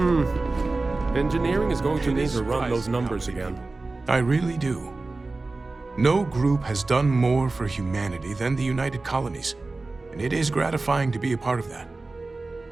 Engineering is going to need to run those numbers again. I really do. No group has done more for humanity than the United Colonies, and it is gratifying to be a part of that.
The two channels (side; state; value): left; quieter; 3.4 dB